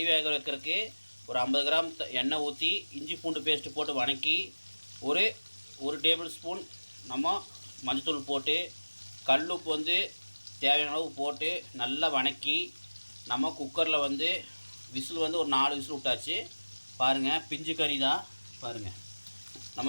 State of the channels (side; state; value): both; inverted; correlation -1.00